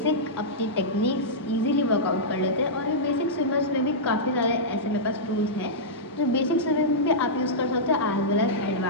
अपनी टेक्निक्स इजीली वर्कआउट कर लेते हैं। और ये बेसिक स्विमर्स में भी काफ़ी सारे ऐसे मेरे पास टूल्स हैं जो बेसिक स्विमिंग में भी आप यूज़ कर सकते हो एज वेल एज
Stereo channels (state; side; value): normal; both; correlation -0.12